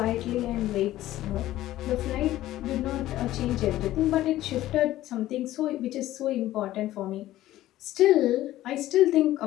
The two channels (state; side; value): quieter; right; 14.8 dB